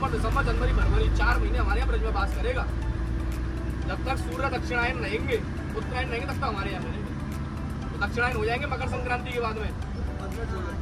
दिसंबर, जनवरी, फरवरी 4 महीने हमारे यहाँ ब्रज में बास करेगा। जब तक सूर्य दक्षिणायन रहेंगे, उत्तरायण रहेंगे, तब तक हमारे यहाँ रहेंगे। तो दक्षिणायन हो जाएंगे मकर संक्रांति के बाद में,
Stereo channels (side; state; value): both; identical; correlation 1.00